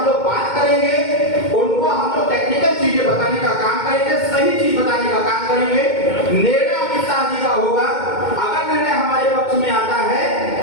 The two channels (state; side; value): late; right; 2.2 ms